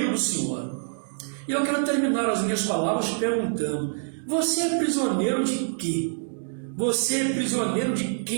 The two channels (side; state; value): left; silent; 61 dB below the other